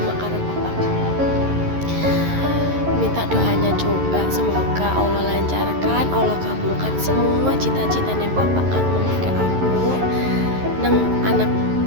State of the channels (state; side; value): late; left; 11 ms